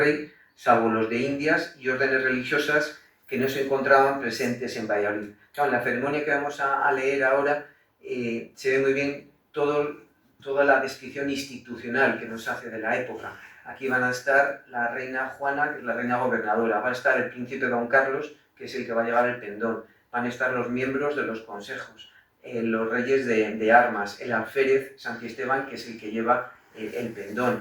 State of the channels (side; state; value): both; identical; correlation 1.00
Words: salvo los de Indias y órdenes religiosas que no se encontraban presentes en Valladolid. Claro, en la ceremonia que vamos a leer ahora se ve muy bien toda la descripción institucional que nos hace de la época. Aquí van a estar la reina Juana, que es la reina gobernadora, va a estar el príncipe Don Carlos, que es el que va a llevar el pendón, van a estar los miembros de los consejos, los reyes de armas, el alférez Santiesteban, que es el que lleva el